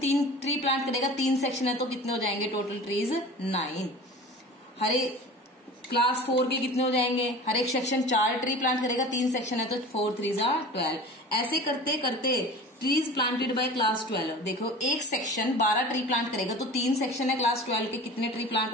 ट्री प्लांट करेगा, 3 सेक्शन है तो कितने हो जाएंगे टोटल ट्रीज? 9। हर एक क्लास 4 के कितने हो जाएंगे? हर एक सेक्शन 4 ट्री प्लांट करेगा, 3 सेक्शन है तो 4 3 12। ऐसे करते करते ट्रीज प्लांटेड बाय क्लास 12, देखो एक सेक्शन 12 ट्री प्लांट करेगा, तो 3 सेक्शन है क्लास 12 के, कितने ट्री प्लांट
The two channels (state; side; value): normal; both; correlation 0.38